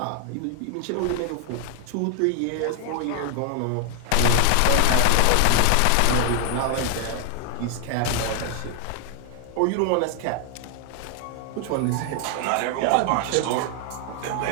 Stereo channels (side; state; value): both; different; correlation 0.00